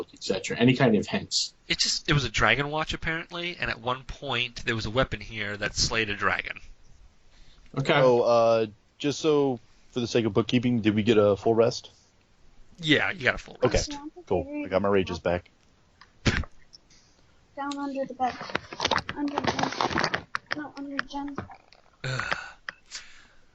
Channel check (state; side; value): identical; both; correlation 1.00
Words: etc.? Any kind of hints? It was a dragon watch apparently, and at one point there was a weapon here that slayed a dragon. Okay. Oh, just so for the sake of bookkeeping, did we get a full rest? Yeah, you got a full Okay, rest. cool. I got my rages back. Down under the bed. Under Jen. No, under Jen.